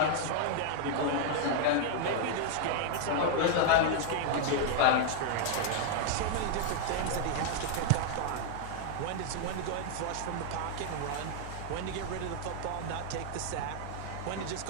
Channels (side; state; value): both; different; correlation -0.01